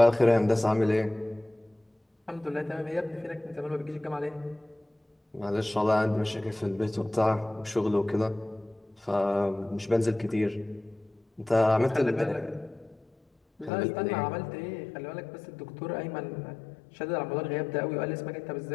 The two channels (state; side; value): drops out; right; at 13.7 s